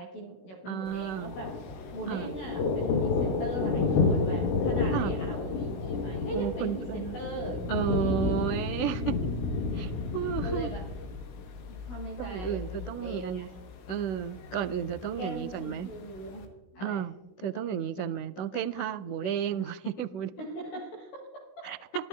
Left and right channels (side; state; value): right; late; 17 ms